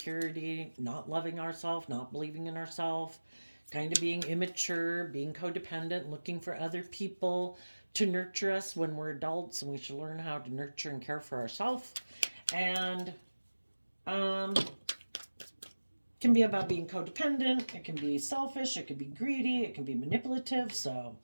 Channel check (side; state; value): both; inverted; correlation -1.00